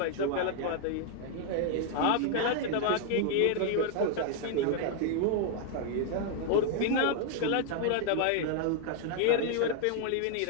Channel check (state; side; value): different; both; correlation 0.00